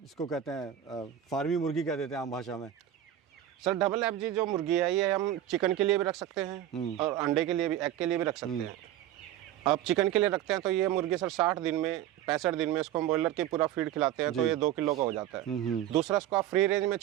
इसको कहते हैं फार्मी मुर्गी कह देते हैं आम भाषा में? सर डबल FG जो मुर्गी है ये हम चिकन के लिए भी रख सकते हैं और अंडे के लिए भी, एग के लिए भी रख सकते हैं। अब चिकन के लिए रखते हैं तो ये मुर्गी सर 60 दिन में 65 दिन में इसको हम बॉयलर के पूरा फीड खिलाते हैं तो ये 2 किलो का हो जाता है। दूसरा इसको आप फ्री रेंज में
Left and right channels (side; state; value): left; quieter; 11.7 dB